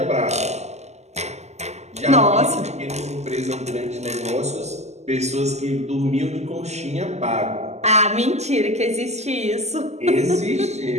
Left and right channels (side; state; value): left; late; 0.33 ms